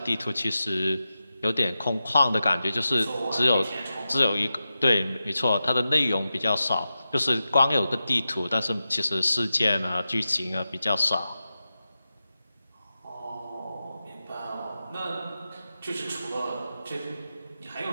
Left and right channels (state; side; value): inverted; both; correlation -0.91